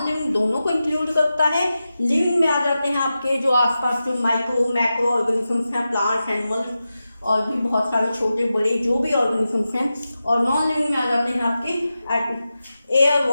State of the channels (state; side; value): inverted; both; correlation -0.92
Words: लिविंग दोनों को इंक्लूड करता है। लिविंग में आ जाते हैं आपके जो आसपास जो माइक्रो मैक्रो ऑर्गेनिजम्स हैं, प्लांट्स, एनिमल्स और भी बहुत सारे छोटे बड़े जो भी ऑर्गेनिजम्स हैं। और नॉन लिविंग में आ जाते हैं आपके एयर,